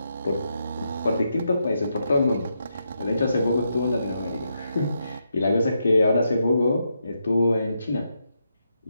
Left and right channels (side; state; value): both; inverted; correlation -0.82